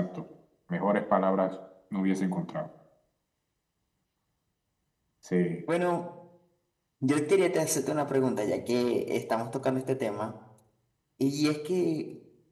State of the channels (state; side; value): identical; both; correlation 1.00